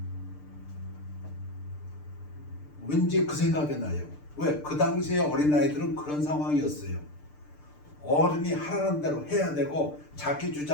왠지 그 생각이 나요. 왜? 그 당시에 어린아이들은 그런 상황이었어요. 어른이 하라는 대로 해야 되고 자기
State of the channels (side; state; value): right; late; 6.7 ms